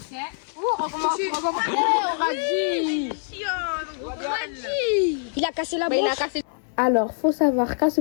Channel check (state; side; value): silent; right; 62 dB below the other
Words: Oh, recommence. On a dit. Il a cassé la Bah, il branche. a cassé. Alors, faut savoir qu'à ce